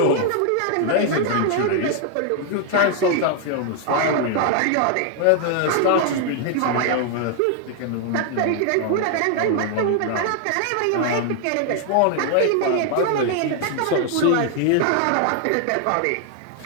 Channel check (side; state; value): both; different; correlation 0.00